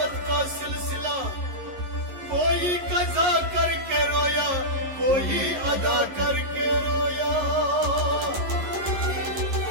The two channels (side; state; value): left; late; 11 ms